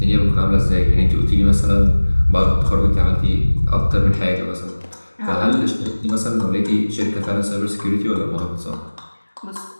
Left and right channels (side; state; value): both; inverted; correlation -1.00